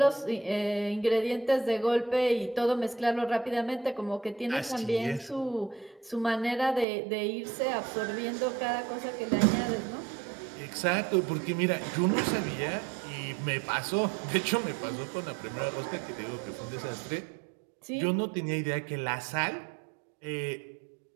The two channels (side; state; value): left; drops out; at 6.9 s